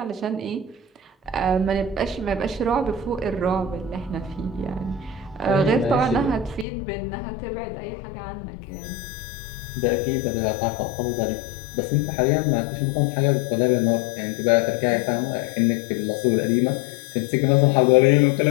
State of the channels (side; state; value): right; drops out; at 6.7 s